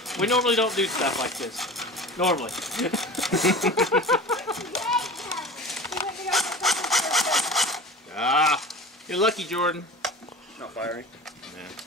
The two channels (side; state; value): both; normal; correlation 0.35